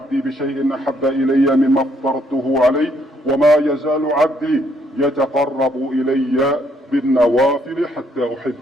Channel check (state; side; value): normal; both; correlation 0.70